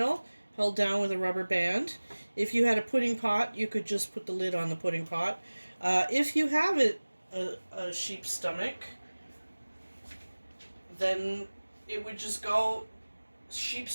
held down with a rubber band. If you had a pudding pot, you could just put the lid on the pudding pot. If you have a sheep's stomach, then it would just go sheep's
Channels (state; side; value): inverted; both; correlation -1.00